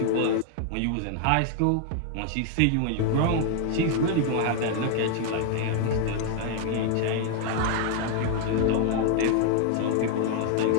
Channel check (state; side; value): different; both; correlation 0.00